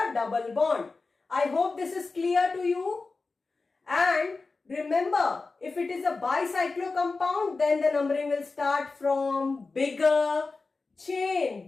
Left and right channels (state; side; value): quieter; right; 3.9 dB